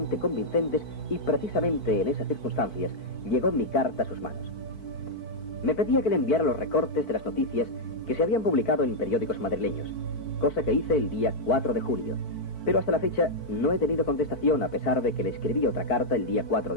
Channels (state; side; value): late; right; 4.5 ms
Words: convincentes y precisamente en esas circunstancias llegó mi carta a sus manos. Me pedía que le enviara los recortes de las noticias que se habían publicado en periódicos madrileños, cosa que hice el día 4 de julio. Pero hasta la fecha no he tenido contestación a pesar de que le escribí otra carta el día 4